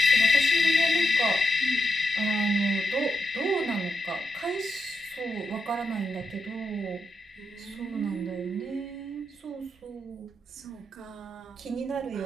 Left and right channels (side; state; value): both; normal; correlation 0.85